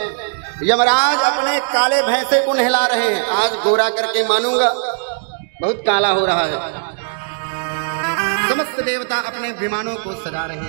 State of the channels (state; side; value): silent; left; 67 dB below the other